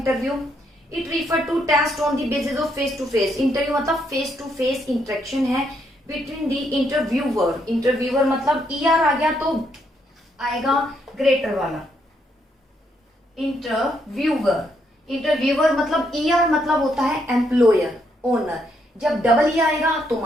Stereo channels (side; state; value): both; normal; correlation 0.75